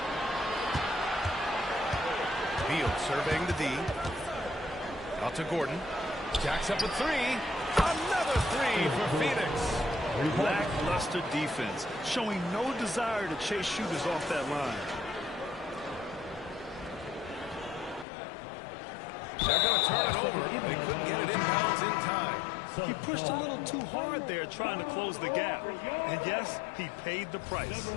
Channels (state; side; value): drops out; right; at 18.1 s